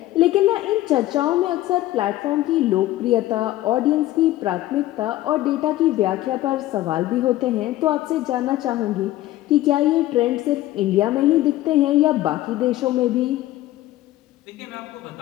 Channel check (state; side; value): quieter; right; 15.5 dB